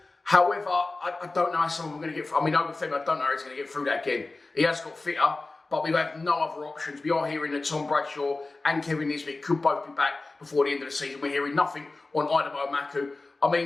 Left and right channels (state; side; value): quieter; right; 3.4 dB